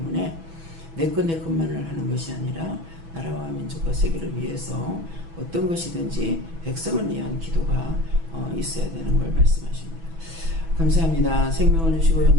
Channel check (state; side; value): late; left; 6.1 ms